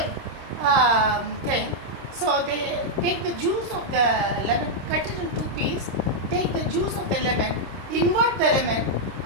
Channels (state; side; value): late; left; 26 ms